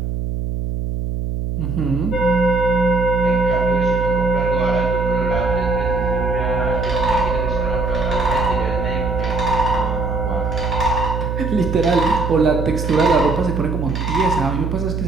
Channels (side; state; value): right; noise; hum, 2 dB below the sound